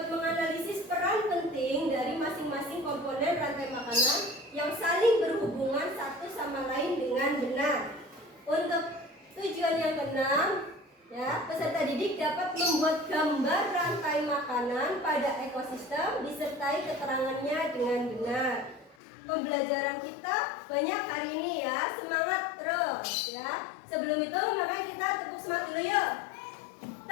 menganalisis peran penting dari masing-masing komponen rantai makanan yang saling berhubungan satu sama lain dengan benar. Untuk tujuan yang keenam, ya, peserta didik dapat membuat gambar rantai makanan pada ekosistem disertai keterangannya dengan benar. Pembelajaran kita banyak hari ini ya, semangat terus ya. Sebelum itu makanya kita tepuk semangat dulu yuk.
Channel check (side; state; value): right; drops out; at 18.9 s